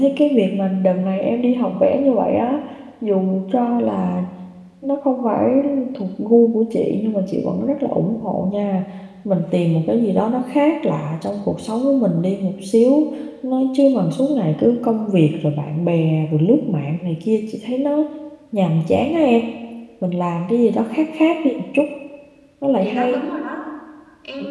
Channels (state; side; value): identical; both; correlation 1.00